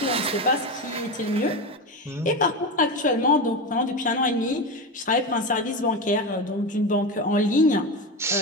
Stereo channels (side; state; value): both; normal; correlation 0.19